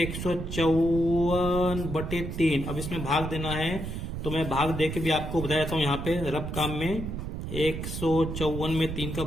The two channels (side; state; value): right; noise; rumble, 5 dB below the sound